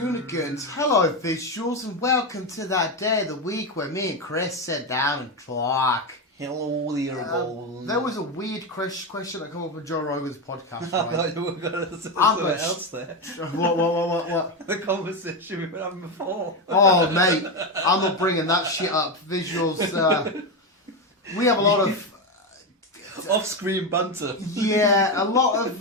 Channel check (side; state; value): both; normal; correlation 0.12